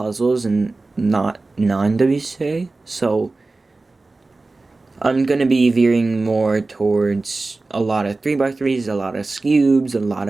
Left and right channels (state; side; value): quieter; left; 3.4 dB